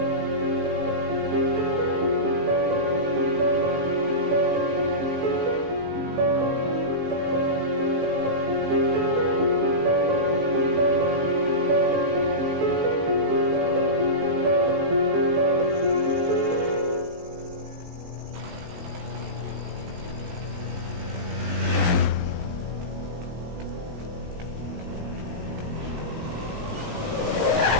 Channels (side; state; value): left; late; 18 ms